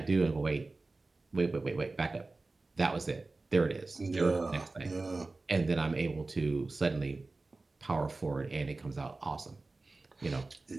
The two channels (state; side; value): quieter; left; 3.4 dB